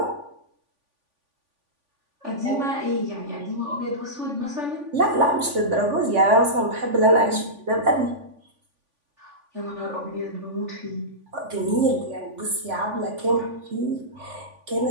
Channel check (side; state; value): left; late; 3.5 ms